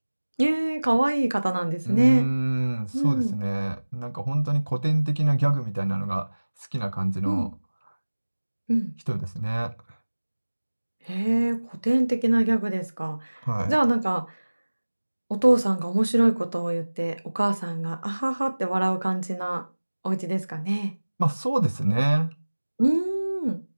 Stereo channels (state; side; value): inverted; both; correlation -1.00